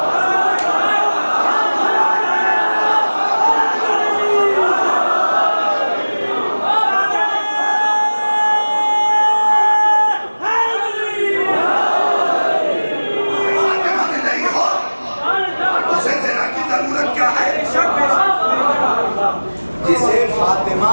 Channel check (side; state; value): both; inverted; correlation -1.00